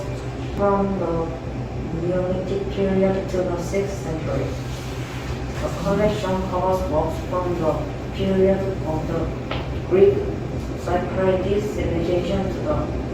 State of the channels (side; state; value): both; identical; correlation 1.00